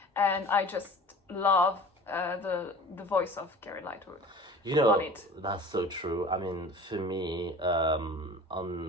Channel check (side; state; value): both; normal; correlation 0.41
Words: and I just love the voice of Carrie Lightwood. You know, that's so true. I mean, for me,